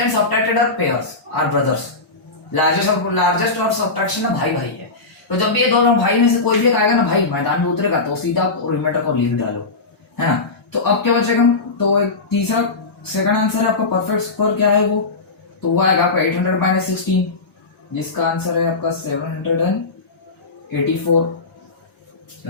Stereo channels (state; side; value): quieter; right; 3.7 dB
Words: subtracted are pairs, are brothers. Largest और subtraction ना भाई है, तो जब भी ये दोनों भाई में से कोई भी एक आएगा ना भाई मैदान में उतरेगा, तो सीधा रिमाइंडर को लिख डालो, है ना। तो अब क्या बचेगा? तो एक तीसरा सेकंड आंसर है आपका परफेक्ट स्क्वायर, क्या है वो? तो वो आएगा आपका 800 माइनस 16, जिसका आंसर है आपका